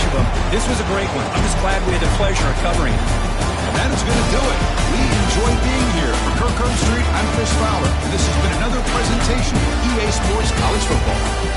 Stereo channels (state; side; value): identical; both; correlation 1.00